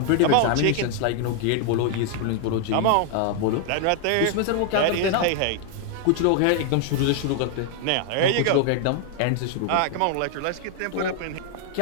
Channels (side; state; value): both; different; correlation 0.00